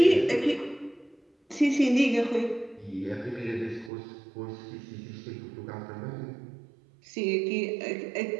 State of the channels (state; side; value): drops out; left; at 3.9 s